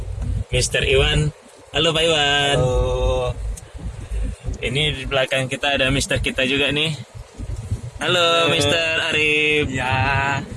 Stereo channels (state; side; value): identical; both; correlation 1.00